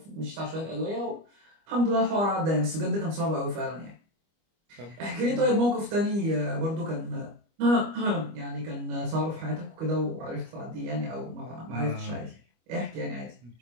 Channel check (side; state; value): left; late; 25 ms